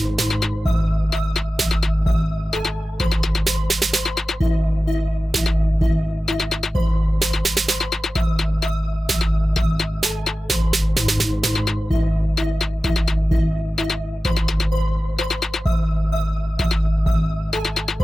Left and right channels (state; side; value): normal; both; correlation 0.96